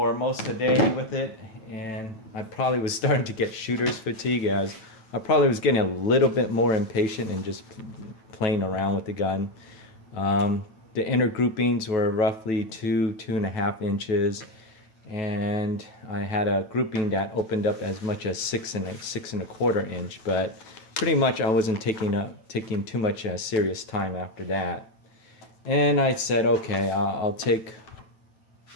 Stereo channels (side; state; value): right; late; 9.1 ms